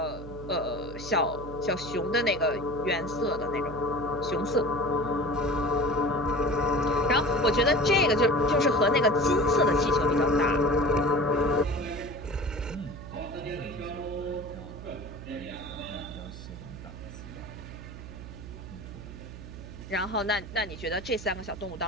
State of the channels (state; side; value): noise; right; hum, 12 dB below the sound